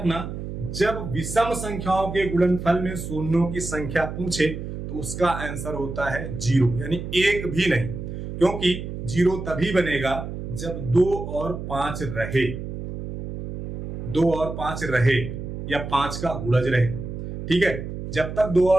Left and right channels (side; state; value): right; noise; hum, 7 dB below the sound